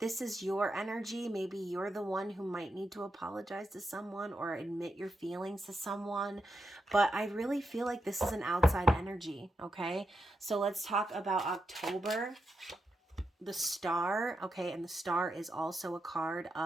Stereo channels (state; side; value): normal; both; correlation 0.85